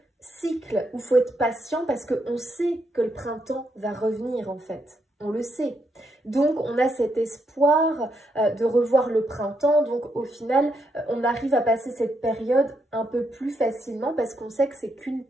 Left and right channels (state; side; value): normal; both; correlation 0.79